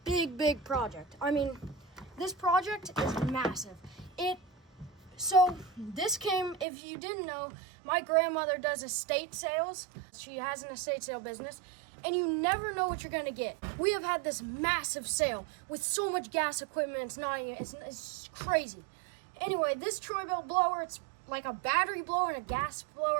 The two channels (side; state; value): left; drops out; at 6.7 s